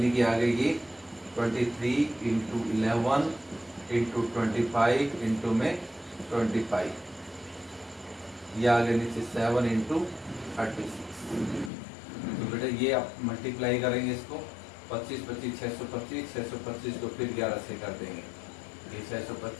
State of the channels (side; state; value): right; drops out; at 11.7 s